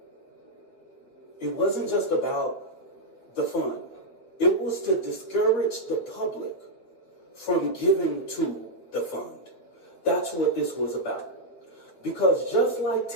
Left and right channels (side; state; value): right; late; 8.4 ms